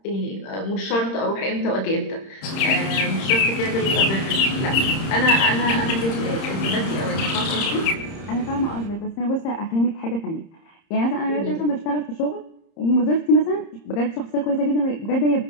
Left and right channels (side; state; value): right; late; 30 ms